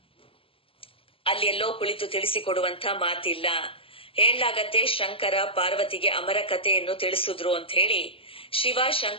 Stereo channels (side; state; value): right; late; 0.26 ms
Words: ಅಲ್ಲೆಲ್ಲೋ ಕುಳಿತು ತಿಳಿಸಿಕೊಡುವಂತ ಮಾತಿಲ್ಲ. ಹೇಳಲಾಗತ್ತೆ, ಶಂಕರ ಪಾರ್ವತಿಗೆ ಅಮರ ಕಥೆಯನ್ನು ತಿಳಿಸಿದ್ರು ಅಂತ ಹೇಳಿ ಶಿವ